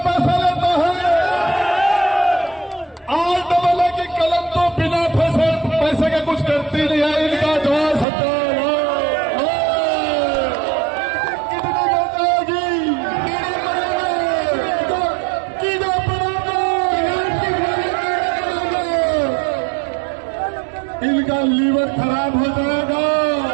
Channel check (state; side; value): drops out; left; at 8.1 s